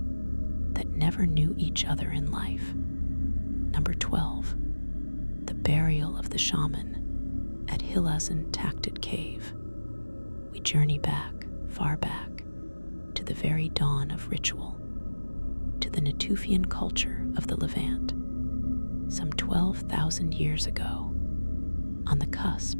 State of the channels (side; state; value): both; inverted; correlation -1.00